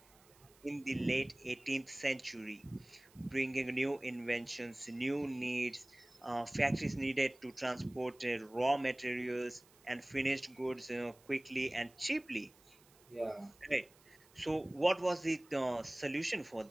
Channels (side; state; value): right; noise; hiss, 28 dB below the sound